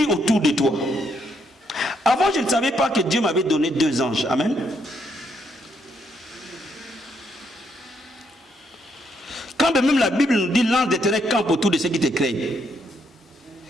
autour de toi. Avant, je ne savais pas que Dieu m'avait donné 2 anges. Amen. Quand même la Bible nous dit l'ange d'Éternel campe autour de ceux qui te craignent.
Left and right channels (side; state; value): both; normal; correlation 0.74